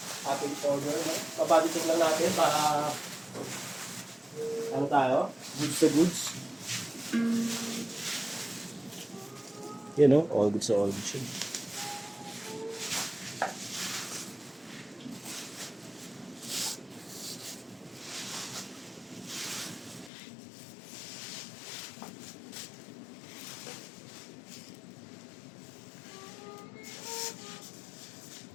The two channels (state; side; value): drops out; right; at 20.1 s